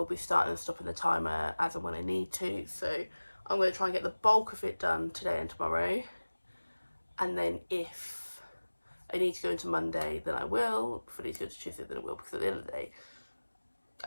be starting and stopping the timer as and when I need to. So I'm going to try and get the bulk of it done today and tomorrow. And then if I need to go into Monday, then I will. If I need to go to Tuesday, then I will. Because at the end of the day,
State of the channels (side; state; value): both; inverted; correlation -1.00